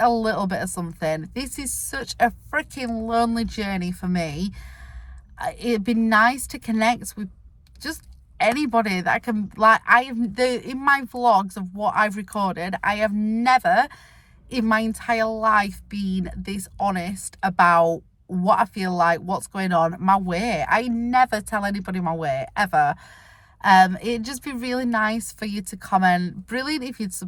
little bit of something. This is such a freaking lonely journey for me. It'd be nice to connect with just anybody that I can, like, in my vlogs of what I've recorded, I have never in my entire life been this honest about what I feel like, what's going on, my weight. I never tell anybody my weight, ever. It'd just be really nice for you to comment. Brilliant if you'd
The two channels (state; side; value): identical; both; correlation 1.00